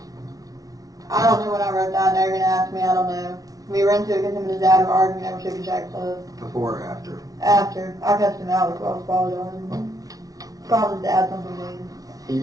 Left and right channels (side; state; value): left; late; 0.18 ms